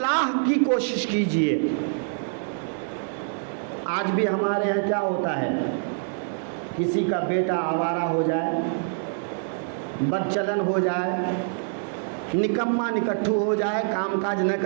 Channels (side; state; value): left; silent; 61 dB below the other